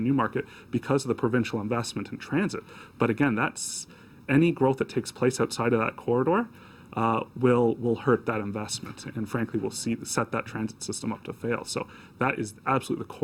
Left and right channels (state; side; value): identical; both; correlation 1.00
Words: Newmarket because of the provincial investment in transit. But again, that's any growth that takes place outside of that corridor will hurt that investment, and frankly will set that transit system up to fail. So that is absolutely the